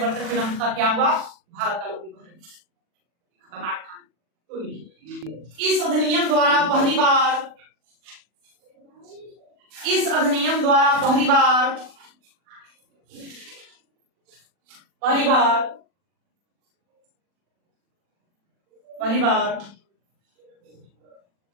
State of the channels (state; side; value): late; left; 40 ms